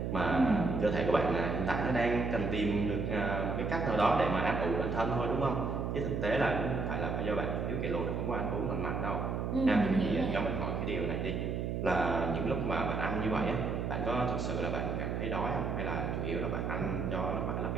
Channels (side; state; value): right; noise; hum, 1 dB below the sound